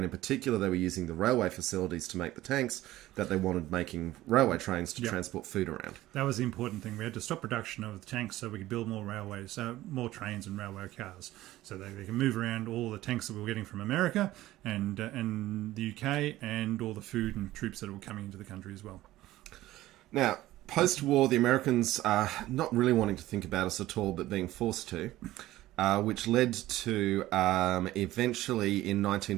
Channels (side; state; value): left; quieter; 16.0 dB